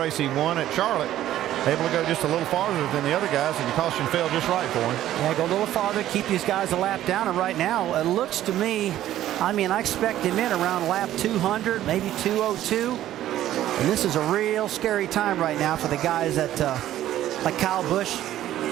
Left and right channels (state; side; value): quieter; left; 12.9 dB